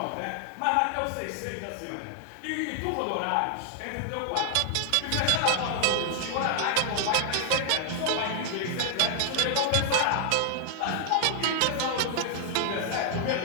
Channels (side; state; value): both; different; correlation 0.00